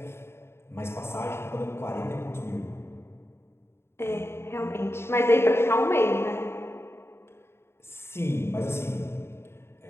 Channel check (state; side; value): late; right; 0.12 ms